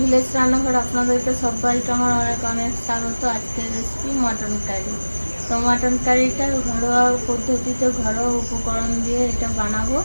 রান্নাঘর আপনাদেরকে সবাইকে আমার অনেক অনেক স্বাগত। আজকের রেসিপি মটন কারি। তো মটন কারিটা ঘরোয়া পদ্ধতিতে ঘরোয়া উপকরণ দিয়ে এটা বানাবো।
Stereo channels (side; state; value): both; inverted; correlation -1.00